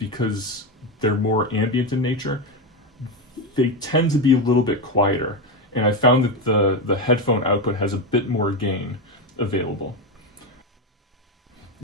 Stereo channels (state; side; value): normal; both; correlation 0.13